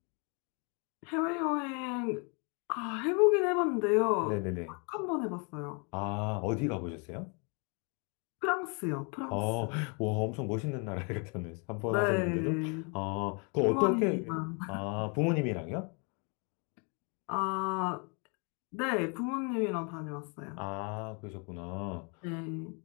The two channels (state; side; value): quieter; right; 35.1 dB